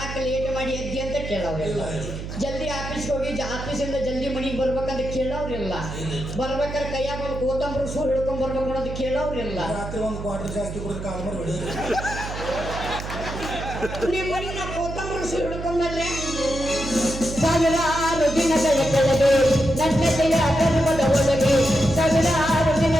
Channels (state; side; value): noise; right; hum, 8 dB below the sound